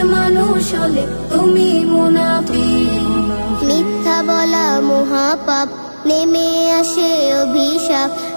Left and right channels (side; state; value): both; inverted; correlation -1.00